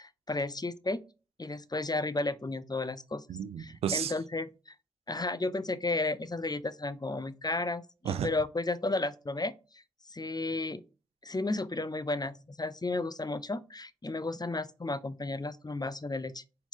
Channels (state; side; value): normal; both; correlation 0.54